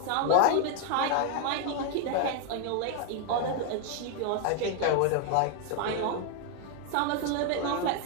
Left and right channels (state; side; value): different; both; correlation 0.01